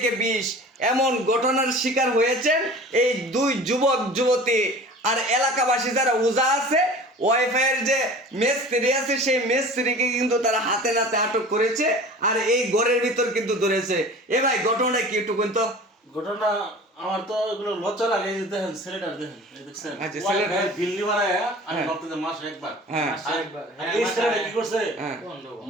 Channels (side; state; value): both; normal; correlation 0.41